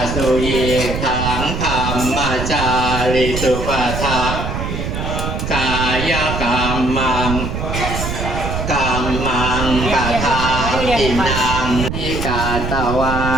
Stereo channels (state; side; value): noise; right; rumble, 4 dB below the sound